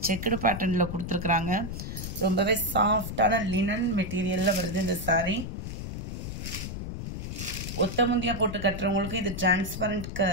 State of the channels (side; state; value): left; noise; rumble, 6 dB below the sound